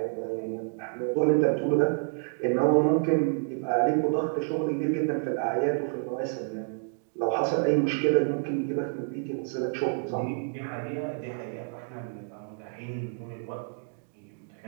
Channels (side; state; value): left; silent; 59 dB below the other